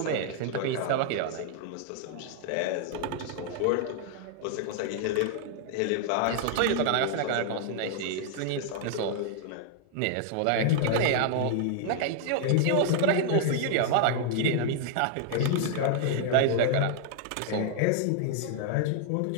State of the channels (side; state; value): both; different; correlation 0.00